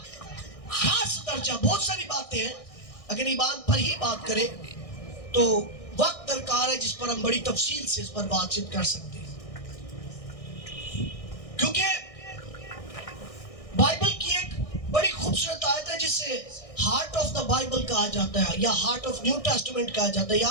खास दर्जा, बहुत सारी बातें हैं, अगर ईमान पर ही बात करें तो वक्त दरकार है जिस पर हम बड़ी तफसील से इस पर बातचीत कर सकते हैं, क्योंकि बाइबल की एक बड़ी खूबसूरत आयत है जिसे हार्ट ऑफ द बाइबल कहा जाता है या हार्ट ऑफ न्यू टेस्टामेंट कहा जाता है।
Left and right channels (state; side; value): late; right; 1.6 ms